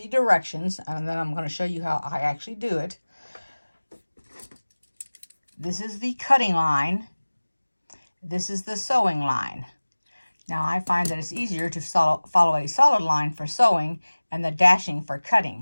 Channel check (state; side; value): inverted; both; correlation -1.00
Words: directions, and then I'm going to show you how I actually do it. This is the cutting line. This is the sewing line. Now I find that it's easier to follow a solid line for sewing and the dashing for